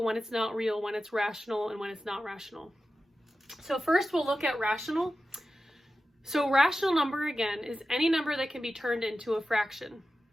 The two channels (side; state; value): both; normal; correlation 0.93